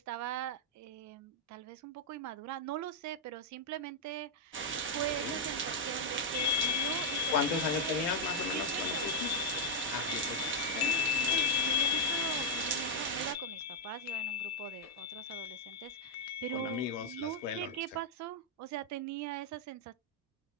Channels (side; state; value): both; normal; correlation -0.02